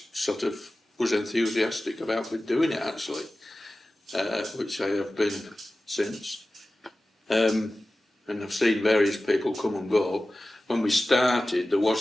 sort of was enthusiastic about doing it actually, which I have been since, and I've seen various people come and go. When we started, there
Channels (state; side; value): normal; both; correlation 0.96